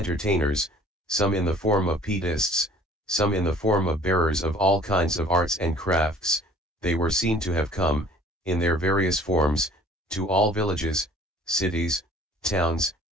some in the form of pietists, some in the form of bearers of all kinds of arts and crafts. They were seen to have come, in their various forms, to all villages, cities, towns,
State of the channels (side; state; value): both; normal; correlation 0.51